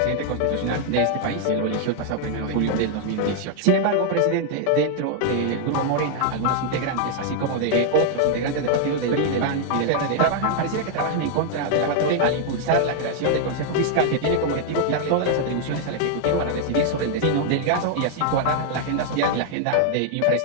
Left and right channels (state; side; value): different; both; correlation 0.00